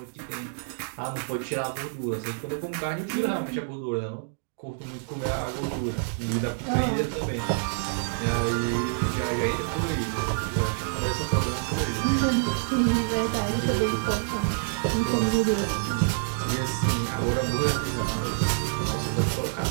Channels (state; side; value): silent; left; digital silence